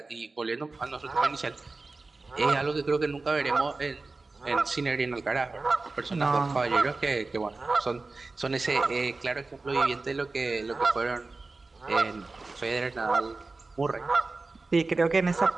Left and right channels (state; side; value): quieter; left; 3.6 dB